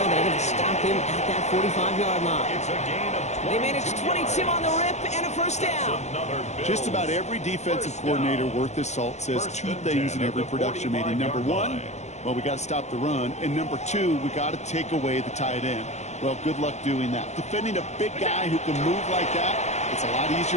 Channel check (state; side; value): late; right; 0.33 ms